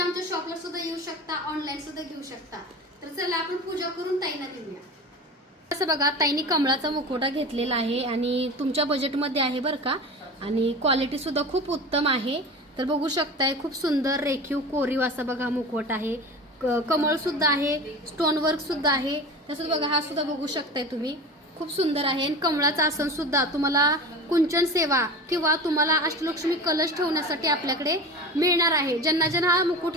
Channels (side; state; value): both; normal; correlation 0.33